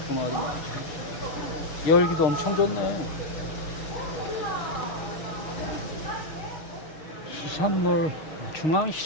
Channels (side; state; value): right; late; 6.5 ms